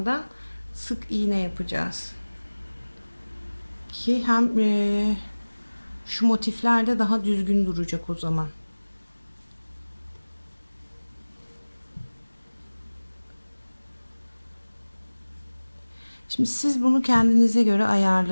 sık iğne yapacağız. Ki hem şu motifler de daha düzgün duracak o zaman. Şimdi siz bunu kendinize göre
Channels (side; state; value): both; inverted; correlation -1.00